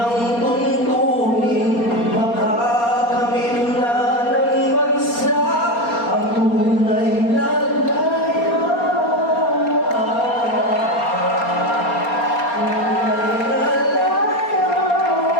tuntunin, makakamit na ng bansa ang tunay na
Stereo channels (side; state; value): right; late; 4.3 ms